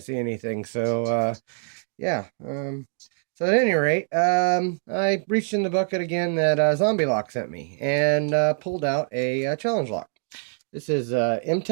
see anything, so yeah. So at any rate, I reached in the bucket again that Zombie Lock sent me and pulled out a challenge lock. This is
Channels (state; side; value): silent; left; digital silence